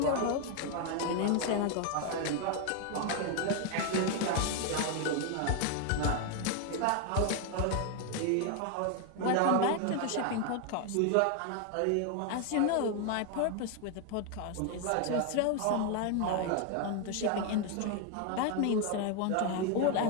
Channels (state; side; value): different; both; correlation 0.01